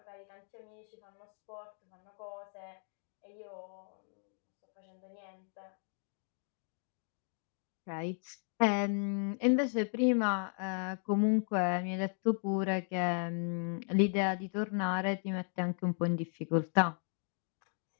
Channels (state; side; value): silent; right; 54 dB below the other